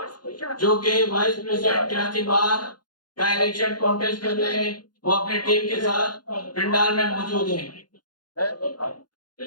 जो कि वाइस प्रेसिडेंट कराची बार का इलेक्शन कॉन्टेस्ट कर रहे हैं, वो अपने टीम के साथ पंडाल में मौजूद हैं।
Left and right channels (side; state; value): right; late; 0.70 ms